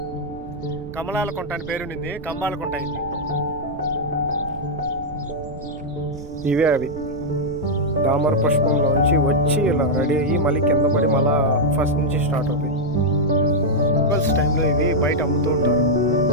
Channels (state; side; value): noise; right; rumble, 14 dB below the sound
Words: కమలాల కుంట అని పేరుండింది, కంబాల కుంట అయింది. ఇవే అవి దామర పుష్పంలోంచి వచ్చి ఇలా రెడీ అయ్యి మళ్ళీ కింద పడి మళ్ళా ఫస్ట్ నుంచి స్టార్ట్ అవుతాయి. ఫెస్టివల్స్ టైంలో ఇవి బయట అమ్ముతూ ఉంటారు,